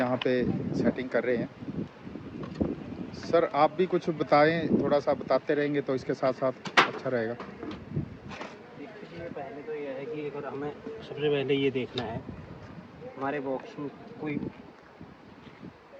पे सेटिंग कर रहे हैं। सर आप भी कुछ बताएं, थोड़ा सा बताते रहेंगे तो इसके साथ साथ अच्छा रहेगा। देखिए पहले तो यह है कि अगर हमें सबसे पहले ये देखना है हमारे बॉक्स में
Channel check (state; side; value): identical; both; correlation 1.00